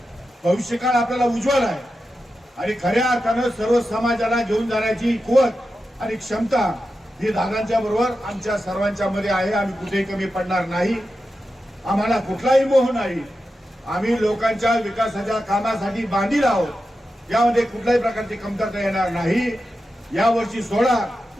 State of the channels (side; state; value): both; normal; correlation 0.90